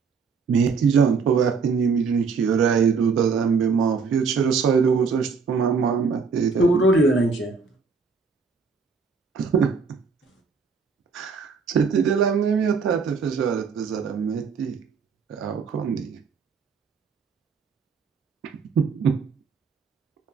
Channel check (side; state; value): left; quieter; 5.2 dB